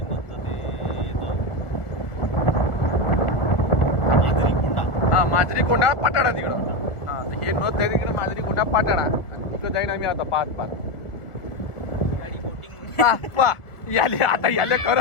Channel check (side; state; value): right; late; 1.6 ms